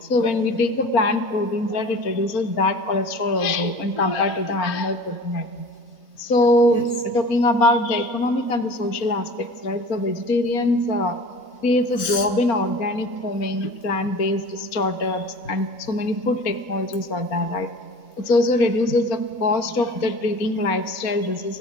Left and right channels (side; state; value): right; late; 4.0 ms